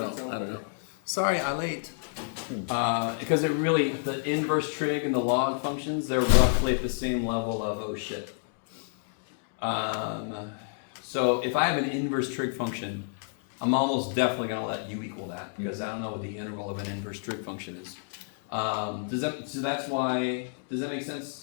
know. Sorry, ilate. Because it really the inverse trig and the log functions they're roughly at the same level of oh shit. So if I have an inverse trig function, I'm almost definitely going to let u equal that because I don't know what the integral of an inverse trig function is. So that's why, does that make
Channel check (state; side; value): silent; right; digital silence